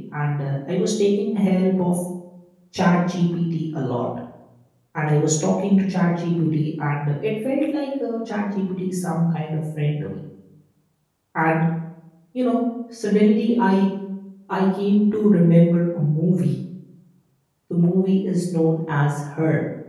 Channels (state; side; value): identical; both; correlation 1.00